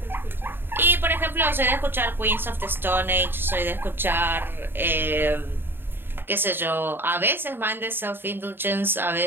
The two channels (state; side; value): late; left; 0.10 ms